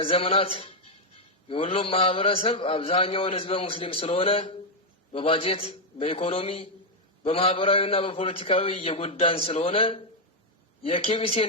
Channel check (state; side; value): normal; both; correlation 0.01